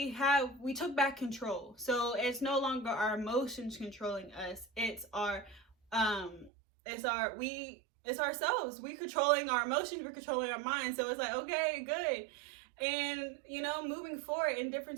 took back control. So it's no longer our emotions controlling us. It's ourselves. We controlling our emotions, we're controlling our minds. So it's like, okay, good. And you know, moving forward in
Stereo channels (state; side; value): drops out; left; at 6.5 s